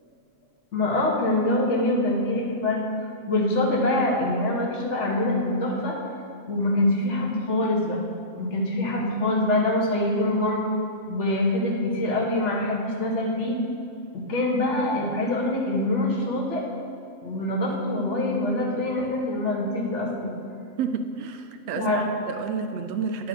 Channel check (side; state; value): left; late; 8.0 ms